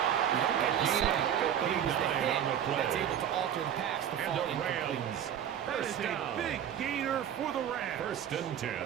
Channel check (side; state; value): left; quieter; 9.6 dB